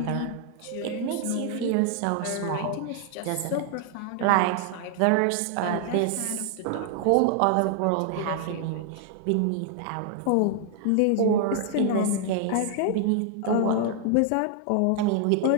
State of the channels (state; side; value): different; both; correlation 0.00